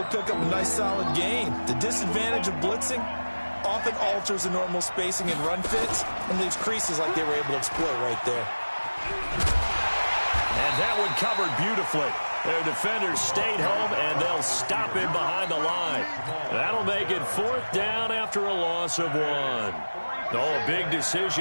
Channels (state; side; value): inverted; both; correlation -1.00